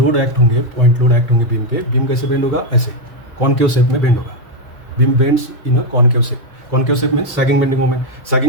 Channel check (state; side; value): normal; both; correlation 0.04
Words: एक्ट होंगे, पॉइंट लोड एक्ट होंगे बीम पे. बीम कैसे बेंड होगा, ऐसे कॉनकेव शेप में बेंड होगा. Beam bends in a concave shape. Concave shape में सैगिंग बेंडिंग